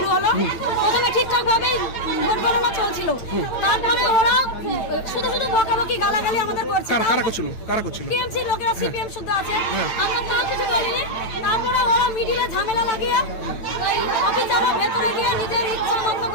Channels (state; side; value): late; right; 8.9 ms